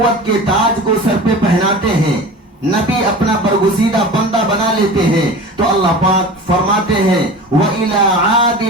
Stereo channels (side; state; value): both; normal; correlation 0.35